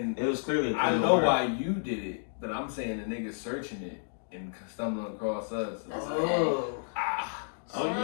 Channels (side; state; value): right; silent; digital silence